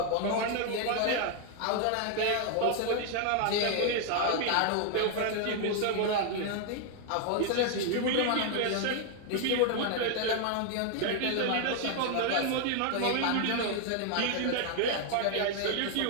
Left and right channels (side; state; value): both; different; correlation 0.00